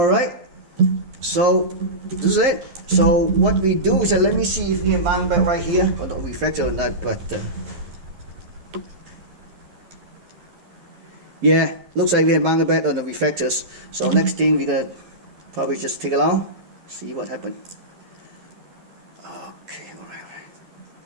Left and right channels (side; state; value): left; late; 12 ms